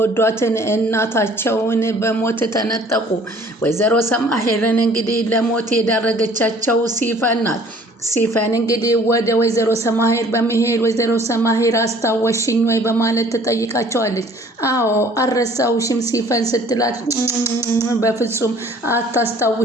እናታቸውን በሞት ተነጠቁ። ወይዘሮ ሰማሄርን እንግዲህ ለሞት የዳረገቻቸው ሲፈን ናት። ሲፈን እንግዲህ ወደ ወይዘሮ ሰማሄር በመሄድ ወይዘሮ ሰማሄር አስታወሽኝ ወይ በማለት ትጠይቃቸዋለች። አዎ አልረሳውሽም ሲፈን ስትላት በፍጹም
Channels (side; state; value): both; normal; correlation 0.54